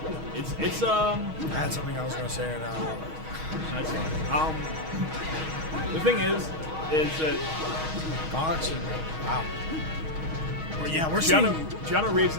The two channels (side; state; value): left; late; 6.3 ms